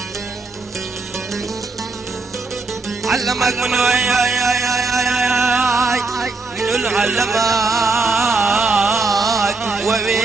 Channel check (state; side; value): quieter; left; 3.7 dB